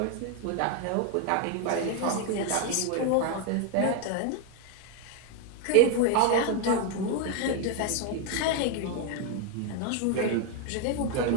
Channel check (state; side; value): different; both; correlation 0.01